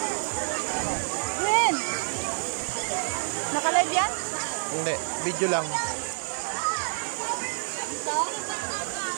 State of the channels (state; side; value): silent; left; digital silence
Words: Ren! Naka-live yan? Hindi, video lang.